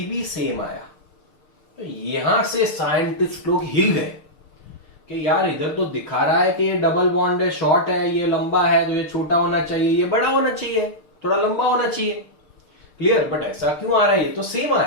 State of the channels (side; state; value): right; late; 6.6 ms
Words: भी सेम आया। तो यहां से साइंटिस्ट लोग हिल गए कि यार इधर तो दिखा रहा है कि ये डबल बॉन्ड है, शॉर्ट है, ये लंबा है, तो ये छोटा होना चाहिए, ये बड़ा होना चाहिए, थोड़ा लंबा होना चाहिए। क्लियर? बट ऐसा क्यों आ रहा है? ये तो सेम